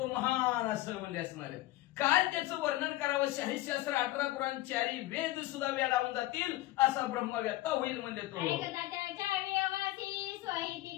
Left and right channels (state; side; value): quieter; right; 17.3 dB